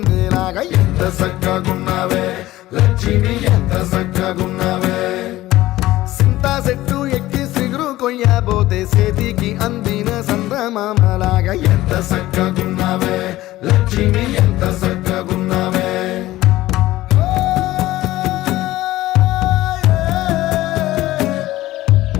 ఎంత చక్కగున్నావే లక్ష్మి ఎంత చక్కగున్నావే సింతా చెట్టు ఎక్కి సిగురు కొయ్యబోతే చేతికి అందిన సందమామలాగా ఎంత చక్కగున్నావే లక్ష్మి ఎంత చక్కగున్నావే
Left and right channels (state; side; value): quieter; right; 16.4 dB